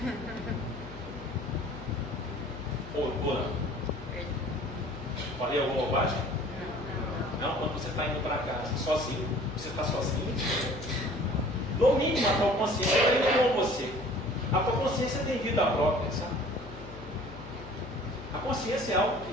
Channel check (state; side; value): noise; left; hum, 13 dB below the sound